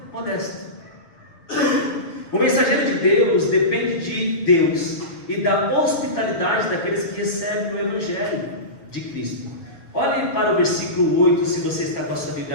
modesto. O mensageiro de Deus depende de Deus e da hospitalidade daqueles que recebem o Evangelho de Cristo. Olhe para o versículo 8, se você está com a sua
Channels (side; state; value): right; late; 6.5 ms